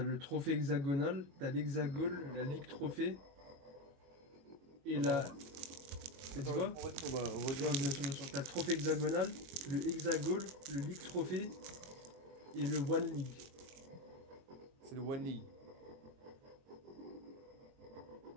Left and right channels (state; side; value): late; left; 22 ms